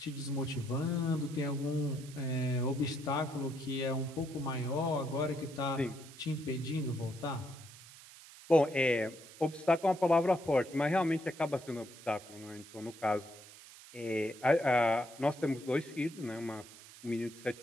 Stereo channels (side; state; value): right; noise; hiss, 18 dB below the sound